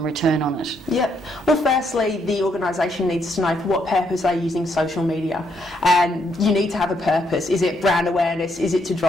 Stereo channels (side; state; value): both; normal; correlation 0.74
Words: return on it? Yep. Well, firstly, the organisation needs to know for what purpose they're using social media, and you need to have a purpose. Is it brand awareness? Is it to